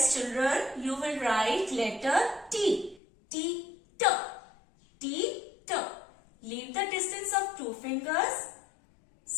children, you will write letter T. T. Leave the distance of 2 fingers.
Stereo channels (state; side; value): drops out; right; at 3.0 s